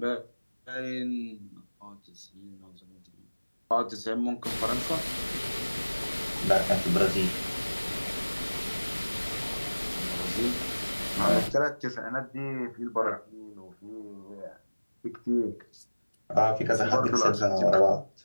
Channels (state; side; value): inverted; both; correlation -1.00